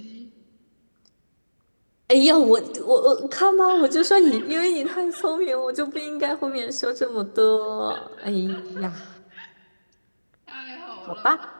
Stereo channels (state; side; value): inverted; both; correlation -1.00